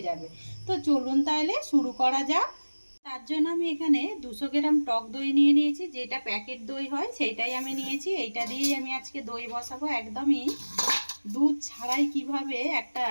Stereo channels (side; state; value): both; inverted; correlation -1.00